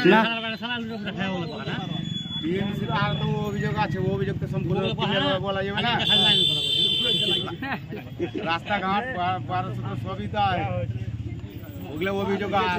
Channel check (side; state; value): both; identical; correlation 1.00